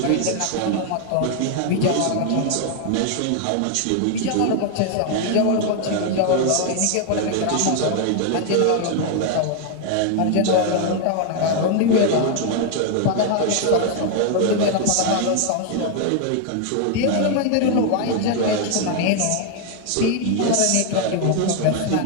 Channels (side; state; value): both; different; correlation 0.00